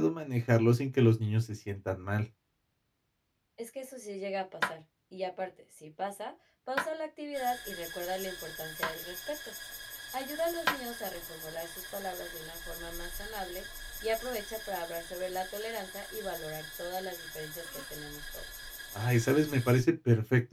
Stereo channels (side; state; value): both; identical; correlation 1.00